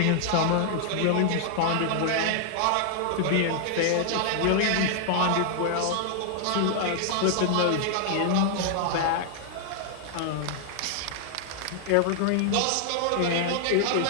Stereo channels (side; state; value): both; different; correlation -0.01